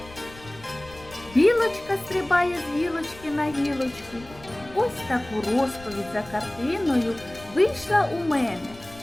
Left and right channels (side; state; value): left; noise; rumble, 20 dB below the sound